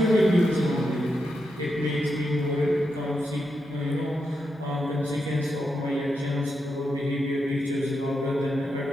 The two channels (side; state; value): both; normal; correlation 0.85